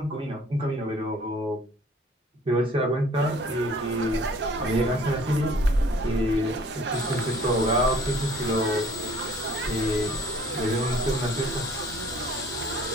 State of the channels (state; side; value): normal; both; correlation 0.53